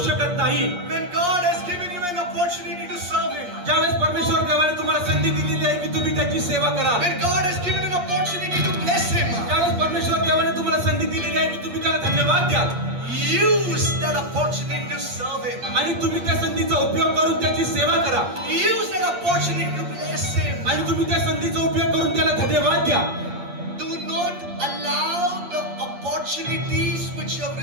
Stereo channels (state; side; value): late; left; 8.5 ms